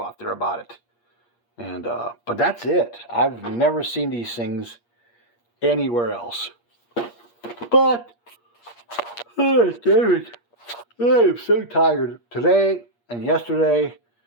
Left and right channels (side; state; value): right; late; 8.5 ms